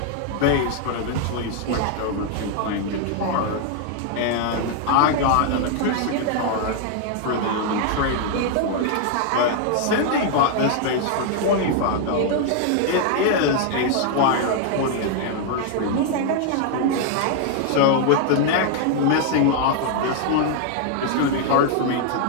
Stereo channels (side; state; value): both; different; correlation 0.00